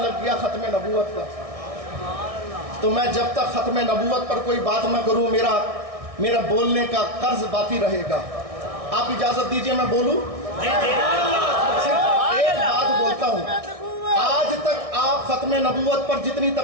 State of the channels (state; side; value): late; left; 1.6 ms